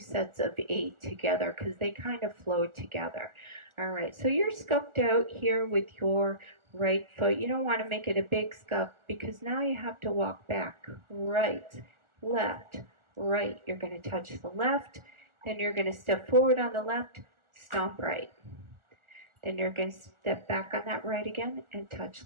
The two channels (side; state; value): left; late; 1.4 ms